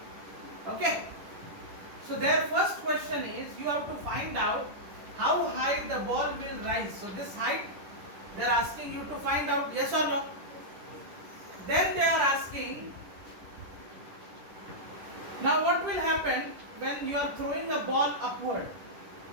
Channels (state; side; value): late; left; 10 ms